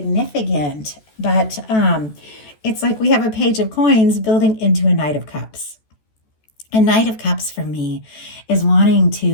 but it's like we have a Page of Coins building into a Knight of Cups. A Knight of Cups for me is wanting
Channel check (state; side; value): late; right; 14 ms